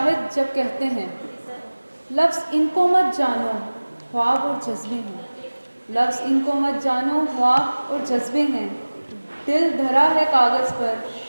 جب کہتے ہیں لفظ ان کو مت جانو خواب اور جذبے ہیں، لفظ ان کو مت جانو خواب اور جذبے ہیں، دل دھرا ہے کاغذ پر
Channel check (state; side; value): inverted; both; correlation -1.00